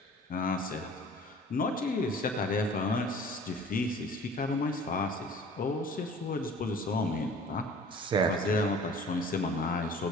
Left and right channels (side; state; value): both; normal; correlation 0.47